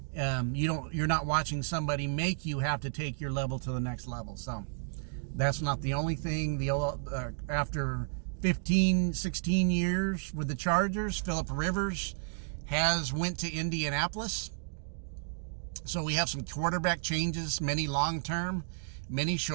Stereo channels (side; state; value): left; silent; digital silence